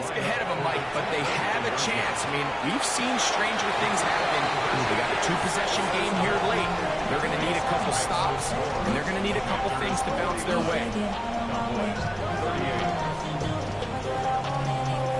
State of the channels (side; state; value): both; identical; correlation 1.00